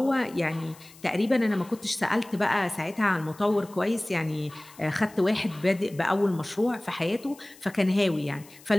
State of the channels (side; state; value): left; noise; hiss, 23 dB below the sound